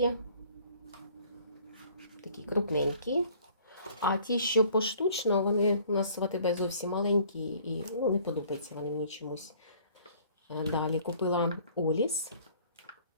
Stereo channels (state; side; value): inverted; both; correlation -0.55